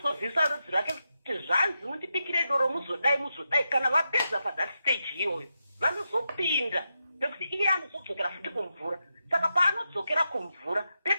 rudzi rwake kuti zvanzi mundibikire doro muzodai kana vapedza pathat stage iyoyo vanozopinda pekuti iye anozodzokera futi kumvura. Saka paanodzokera kumvura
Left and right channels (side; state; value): both; inverted; correlation -0.87